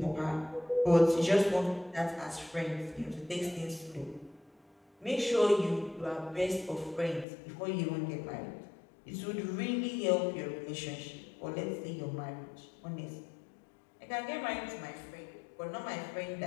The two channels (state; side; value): drops out; right; at 7.2 s